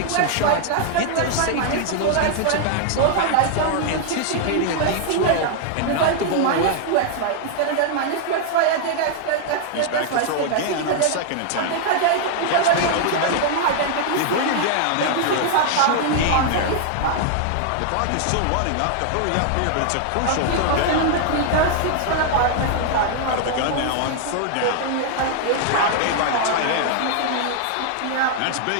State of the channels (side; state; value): both; different; correlation -0.01